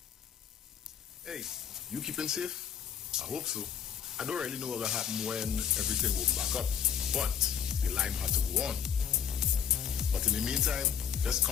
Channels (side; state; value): right; quieter; 8.2 dB